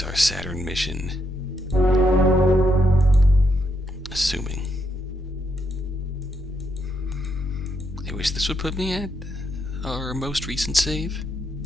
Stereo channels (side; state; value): both; normal; correlation 0.78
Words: our Saturn mission. Assuming. I wish this would put me at our most recent save.